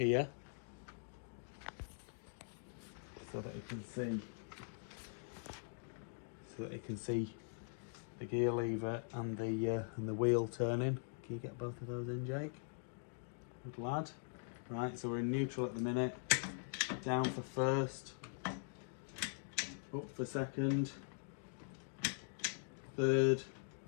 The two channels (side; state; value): right; silent; digital silence